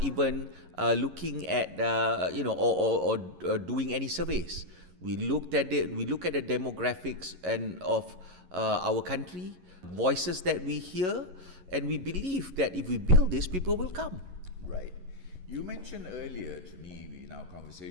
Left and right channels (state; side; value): late; left; 11 ms